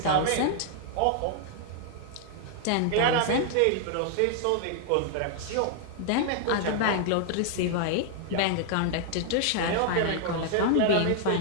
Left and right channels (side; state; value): both; different; correlation 0.00